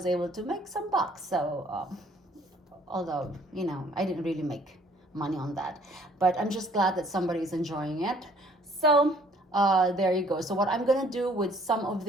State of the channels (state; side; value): normal; both; correlation 0.59